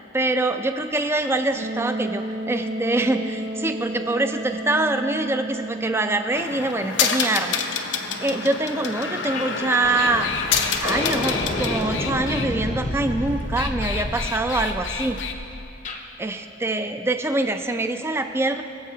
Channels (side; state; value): both; normal; correlation 0.47